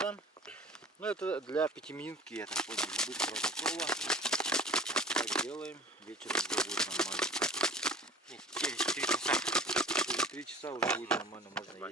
Ну это для 5-минутки, я так понял, быстро готово. Так делаем, вечером уже будет нормально. Через 3 часа. Через 3 часа уже будет нормально, можно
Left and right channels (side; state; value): both; normal; correlation 0.44